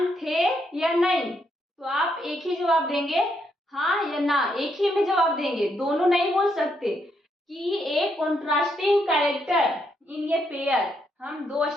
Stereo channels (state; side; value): normal; both; correlation 0.77